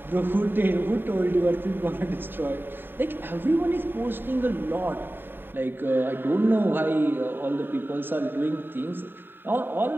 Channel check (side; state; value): left; late; 0.096 ms